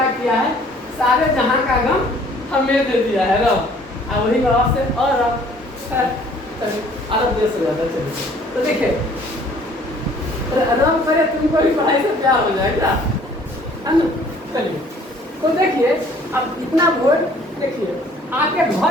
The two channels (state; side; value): normal; both; correlation 0.56